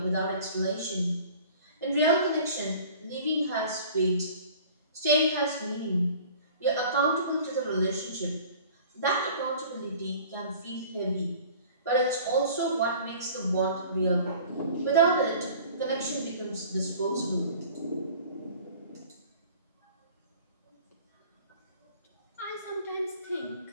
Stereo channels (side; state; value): both; inverted; correlation -0.46